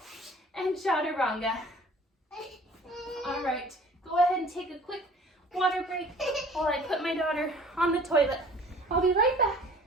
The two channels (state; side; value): normal; both; correlation 0.49